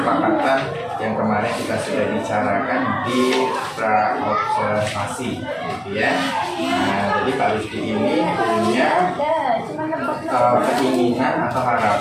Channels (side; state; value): both; identical; correlation 1.00